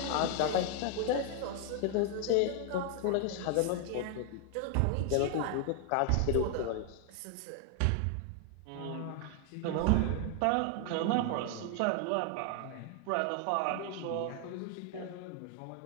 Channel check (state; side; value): different; both; correlation 0.00